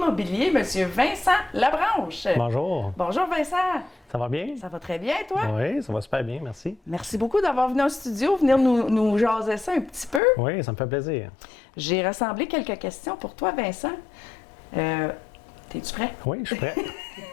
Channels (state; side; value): drops out; right; at 10.2 s